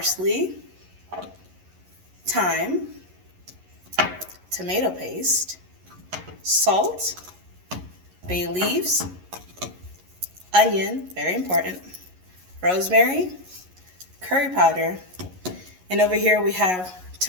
thyme, tomato paste, salt, bay leaves, onion, very important, rosemary, curry powder, and over here we have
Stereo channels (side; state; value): left; late; 11 ms